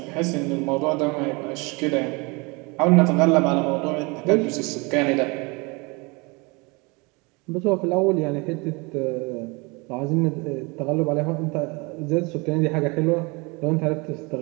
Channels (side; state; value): left; quieter; 27.8 dB